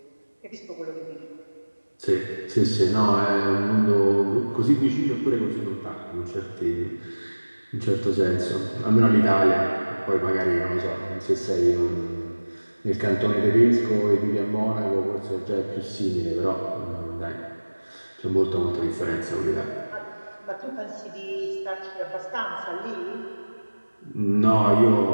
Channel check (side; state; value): both; inverted; correlation -1.00